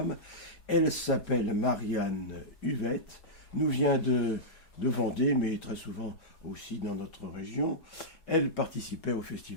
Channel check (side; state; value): right; late; 4.8 ms